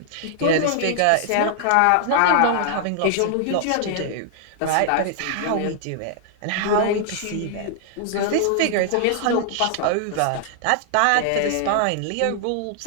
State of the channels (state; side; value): different; both; correlation 0.00